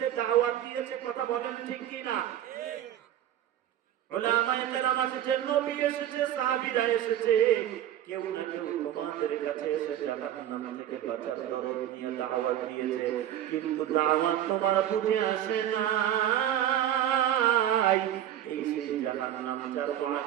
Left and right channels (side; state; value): left; quieter; 11.5 dB